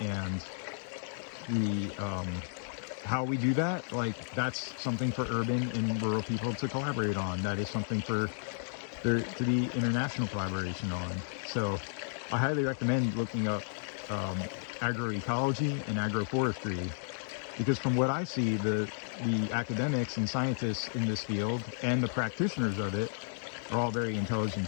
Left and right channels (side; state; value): right; silent; digital silence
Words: how we do that, like, that's something for urban and rural people to collaborate on. That is something for there to be international collaboration on. So I highly recommend looking up agroecology and agroforestry, because from what I see, the the academics and scientists in this field and the practitioners of it are all very